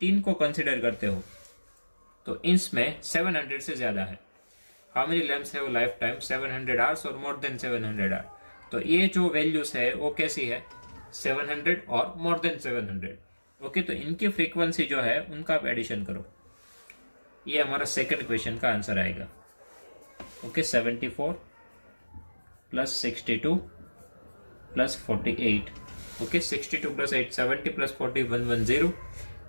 को कंसिडर करते हो तो इसमें 700 से ज्यादा है। हाउ मेनी लैम्प्स है वो लाइफ टाइम 700 hours और मोर देन 700 hours। तो ये जो वैल्यूज है वो कैसी है 700 और मोर देन 700। ओके, तो इनकी फ्रीक्वेंसी जो है उनका आप एडिशन करो, ये हमारा सेकंड क्वेश्चन का आंसर आएगा। Okay, 74 plus 62 plus 48। Okay, 62 plus 8 70 plus 40 110,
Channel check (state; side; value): inverted; both; correlation -1.00